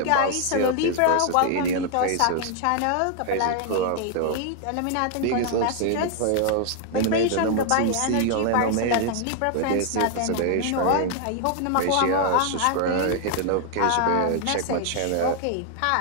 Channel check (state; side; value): different; both; correlation 0.00